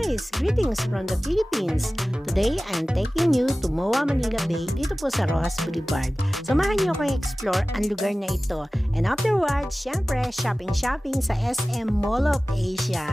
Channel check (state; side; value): normal; both; correlation 0.97